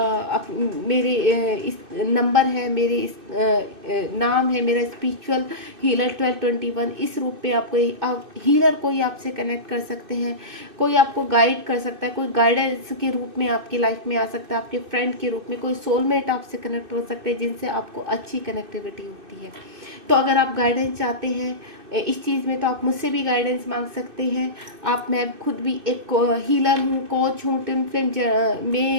मेरे इस नंबर है, मेरे इस नाम है, मेरा स्पिरिचुअल हीलर 1221। इस रूप में आपको हीलर कोई आपसे कनेक्ट कर सकते हैं, कोई आपको गाइड कर सकता है, कोई गाइडेंस के रूप में आपकी लाइफ में आ सकता है, आपके फ्रेंड के रूप में कोई सोलमेट आपसे कनेक्ट हो सकते हैं, जिनसे आपको अच्छी कनेक्टिविटी होती है। तो अगर आप गाइडेंस चाहते हैं इस चीज़ में, तो आप मुझसे भी गाइडेंस मांग सकते हैं। मैं खुद भी एक हीलर हूँ, कोच हूँ, ट्विन फ्लेम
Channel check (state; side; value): late; left; 2.6 ms